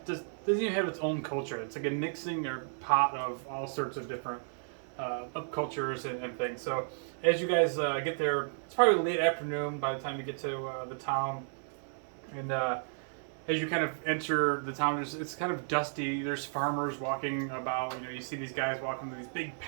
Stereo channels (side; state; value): left; silent; 56 dB below the other